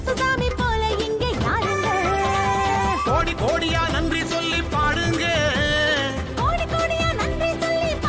சாமி போல இங்கே யாருங்க. கோடி கோடியா நன்றி சொல்லி பாடுங்க, கோடி கோடியா நன்றி சொல்லி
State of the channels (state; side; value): identical; both; correlation 1.00